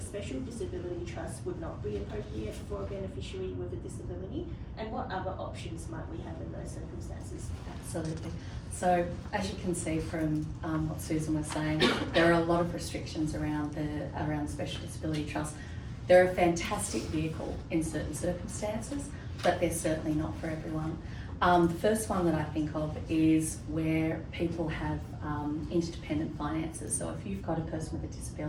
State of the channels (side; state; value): both; identical; correlation 1.00